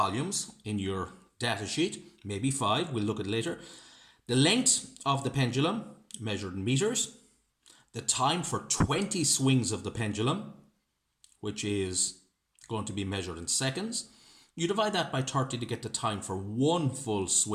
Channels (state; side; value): identical; both; correlation 1.00